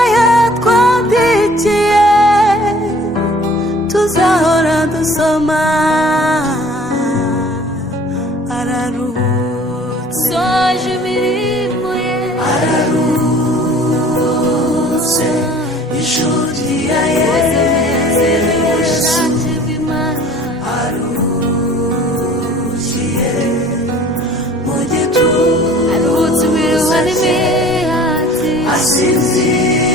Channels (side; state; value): both; normal; correlation 0.50